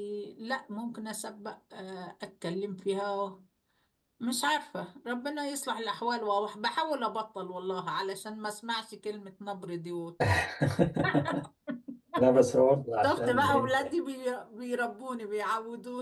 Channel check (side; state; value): both; identical; correlation 1.00